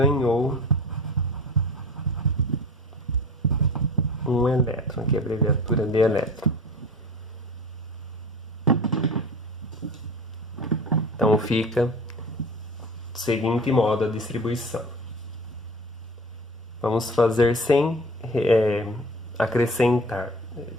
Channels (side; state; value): both; normal; correlation 0.38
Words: um elétron, aqui é a abreviatura de elétron. Então fica do seguinte modo a distribuição. Vamos fazer sem acrescentar.